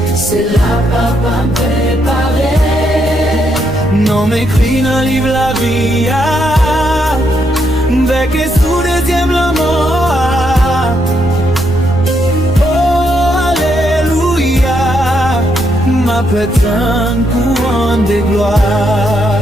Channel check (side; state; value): right; noise; rumble, 15 dB below the sound